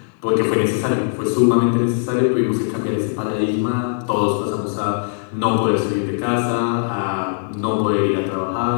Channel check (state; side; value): silent; right; 57 dB below the other